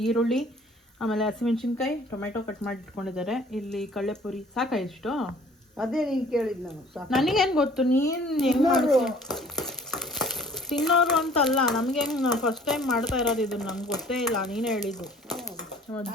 ಈರುಳ್ಳಿ, ಆಮೇಲೆ ಹಸಿಮೆಣ್ಸಿನ್ಕಾಯಿ, ಟೊಮೆಟೊ ಕಟ್ ಮಾಡಿ ಇಟ್ಕೊಂಡಿದ್ದಾರೆ. ಇಲ್ಲಿ ಕಡಲೆಪುರಿ. ಸಾಕಾ ಇಷ್ಟು? ಅದೇ ನೀನು ಕೇಳಿದ್ದು ನಾನು. ನನಗೇನು ಗೊತ್ತು ನೀನು ಹೆಂಗೆ ಮಾಡ್ತೀಯ? ತಿನ್ನೋರು ಅಂತಲ್ಲ, ನಮ್ಗೆ ಹೆಂಗೆ ಫಸ್ಟ್ ಟೈಮ್ ಮಾಡ್ತಾ ಇರೋದು ಇದು, ನಮ್ಗೆ ಗೊತ್ತೇ ಇಲ್ಲ, ನೀನೇ ಹೇಳಿದ್ದು.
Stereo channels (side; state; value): both; normal; correlation 0.53